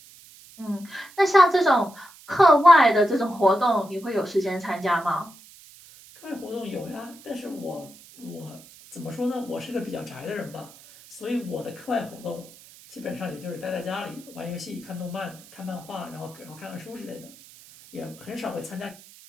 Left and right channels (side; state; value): right; noise; hiss, 22 dB below the sound